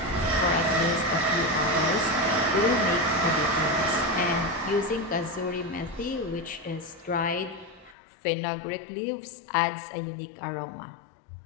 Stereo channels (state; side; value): drops out; right; at 8.0 s